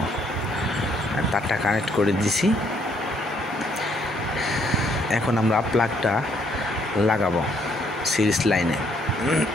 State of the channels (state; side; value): normal; both; correlation 0.69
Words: তারটা কানেক্ট করে দিছি। এখন আমরা প্লাগটা লাগাবো সিরিজ লাইনে।